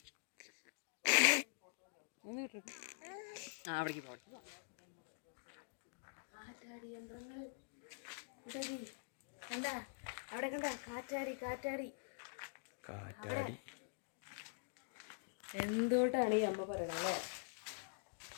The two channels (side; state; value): right; silent; digital silence